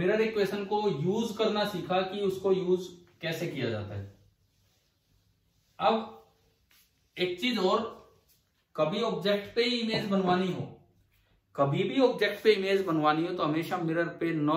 इक्वेशन को यूज करना सीखा कि उसको यूज कैसे किया जाता है। अब एक चीज और, कभी ऑब्जेक्ट पे इमेज बनवानी हो, कभी भी ऑब्जेक्ट पे इमेज बनवानी हो तो हमेशा मिरर पे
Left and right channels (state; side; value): identical; both; correlation 1.00